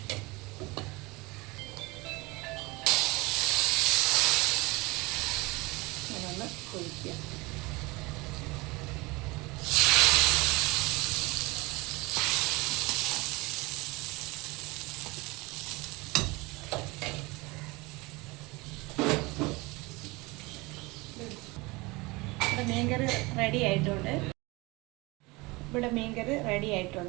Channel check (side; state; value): left; quieter; 23.9 dB